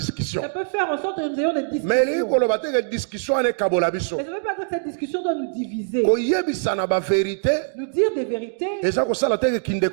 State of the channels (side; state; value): left; silent; digital silence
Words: faire en sorte que nous ayons des discussions. Mais ça ne veut pas dire que cette discussion doit nous diviser. Nous dire des vérités. Ça ne veut